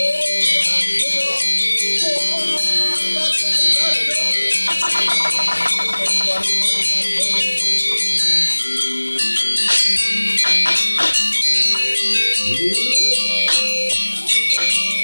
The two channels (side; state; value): both; inverted; correlation -1.00